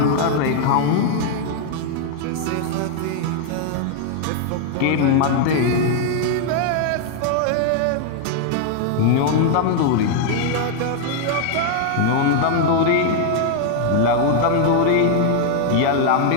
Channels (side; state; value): both; different; correlation 0.00